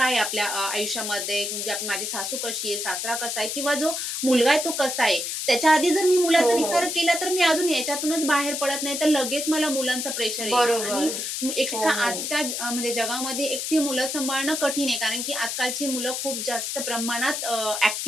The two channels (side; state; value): left; noise; hiss, 3 dB below the sound